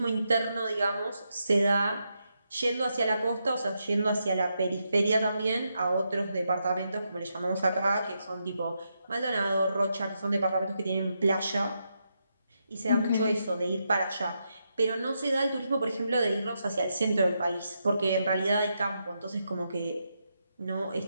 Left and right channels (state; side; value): inverted; both; correlation -0.83